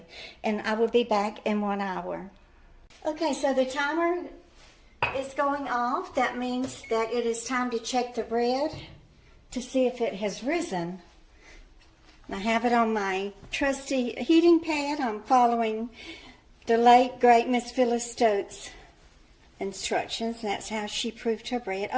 And I will be back in 1 hour. Okay, so the timer is going off. That means that it is time to check the bread to see if it has risen. I have it on my trusty heating pad. I'm following the late, great Miss Phyllis Stokes' instructions. That's how she proofed her bread.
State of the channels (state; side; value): identical; both; correlation 1.00